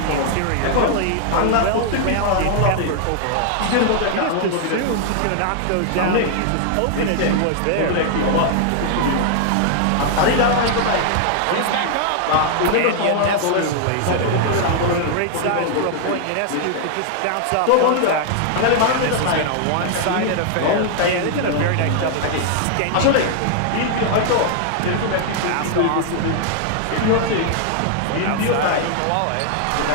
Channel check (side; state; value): both; different; correlation 0.00